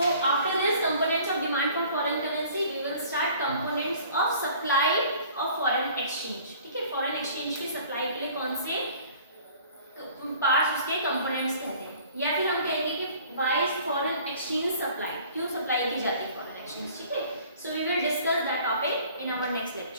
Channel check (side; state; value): both; inverted; correlation -0.51